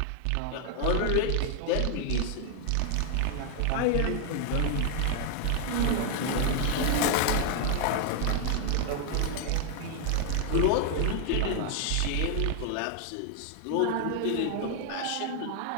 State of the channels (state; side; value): different; both; correlation 0.00